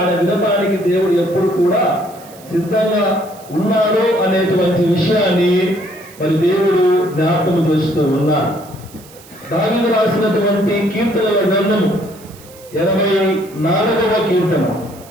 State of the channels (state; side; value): noise; right; hiss, 22 dB below the sound